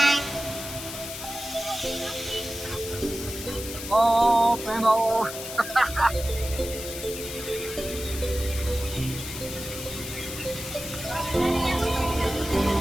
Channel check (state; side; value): noise; left; hiss, 9 dB below the sound